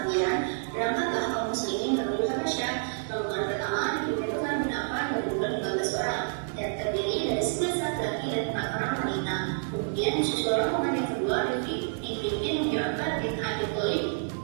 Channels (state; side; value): silent; left; digital silence